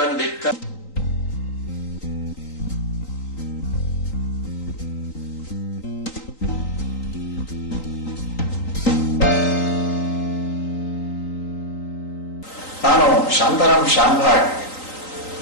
ನಾನು ಶಾಂತಾರಾಮ್ ಶಾಂಭಾಗ್.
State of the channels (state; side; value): late; right; 3.9 ms